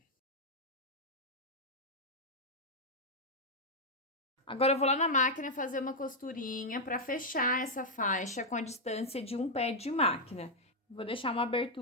Agora, eu vou lá na máquina fazer uma costurinha para fechar essa faixa com a distância de um pé de máquina. Vou deixar uma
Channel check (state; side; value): normal; both; correlation -0.02